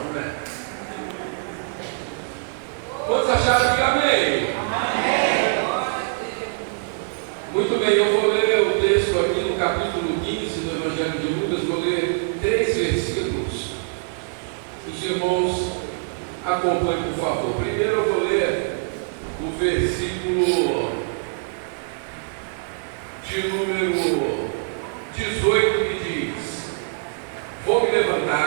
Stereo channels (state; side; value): silent; left; digital silence